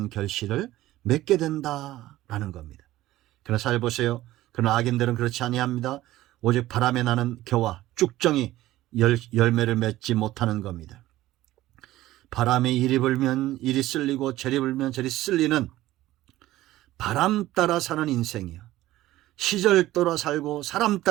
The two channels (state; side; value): quieter; left; 15.7 dB